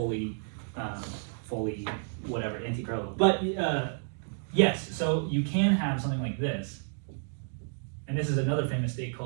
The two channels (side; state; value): left; silent; 57 dB below the other